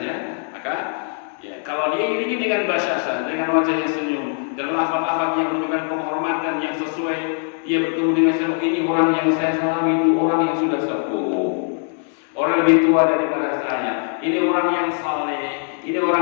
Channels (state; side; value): silent; right; 58 dB below the other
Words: ya. Maka ya kalau dia iringi dengan basyasah, dengan wajahnya senyum dan lafaz-lafaz yang menunjukkan penghormatan yang sesuai, dia bertemu dengan siapa, ini orang yang saya salami itu orang yang sudah sepuh, orang lebih tua daripada saya, ini orang yang saleh, ini